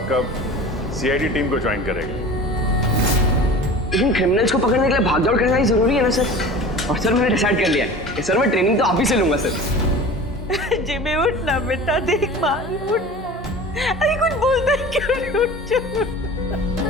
कब सीआईडी टीम को ज्वाइन करेगा। लेकिन क्रिमिनल्स को पकड़ने के लिए भागदौड़ करना ही जरूरी है ना सर। और सर मैंने डिसाइड कर लिया है कि सर मैं ट्रेनिंग तो आप ही से लूंगा सर। जिमी उठना बेटा, देख मार उठ। अरे कुछ बोलता है क्यों नहीं? उठ जा।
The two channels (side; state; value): both; normal; correlation 0.38